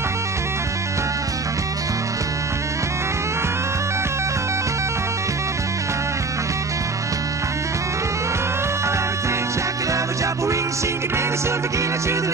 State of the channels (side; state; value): left; quieter; 3.9 dB